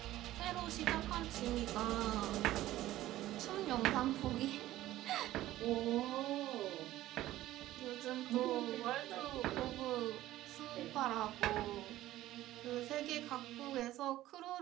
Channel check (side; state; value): left; quieter; 15.0 dB